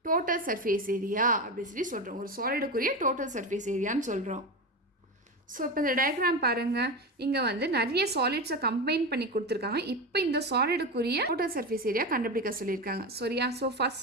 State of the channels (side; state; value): both; normal; correlation 0.20